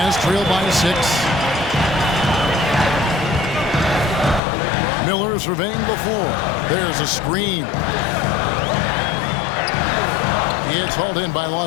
trail by 6. Miller surveying the floor. There's a screen. It's hauled in by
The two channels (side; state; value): right; drops out; at 4.4 s